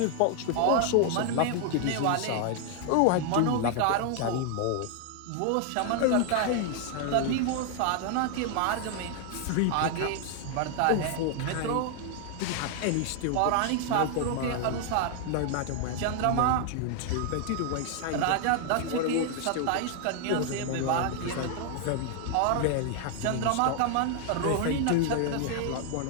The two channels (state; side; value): different; both; correlation 0.00